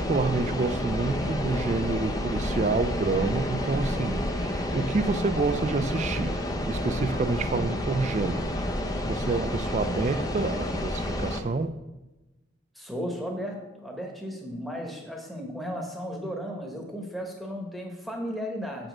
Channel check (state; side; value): normal; both; correlation 0.61